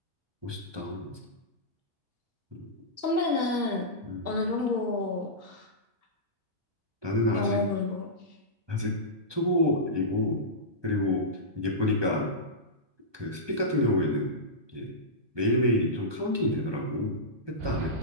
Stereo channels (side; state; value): left; late; 1.2 ms